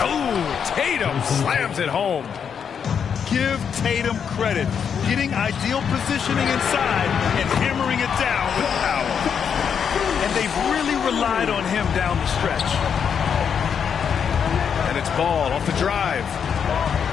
Oh, Tatum slams it home. Give Tatum credit. Getting ideal positioning inside and hammering it down with power. And they've really relied on him down the stretch. And it's Ball off the drive.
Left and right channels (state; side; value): quieter; right; 7.3 dB